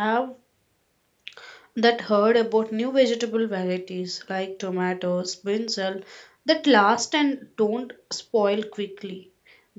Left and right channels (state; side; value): identical; both; correlation 1.00